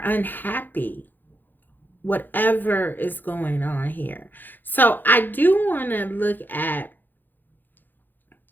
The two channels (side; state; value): right; late; 0.089 ms